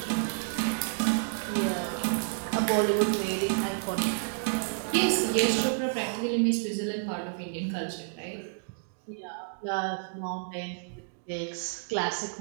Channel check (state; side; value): silent; left; digital silence